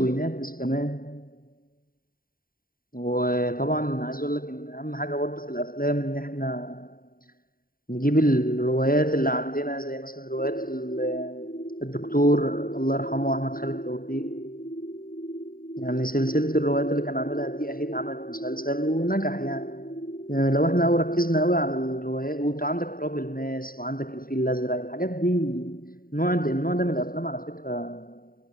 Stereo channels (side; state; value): right; late; 0.41 ms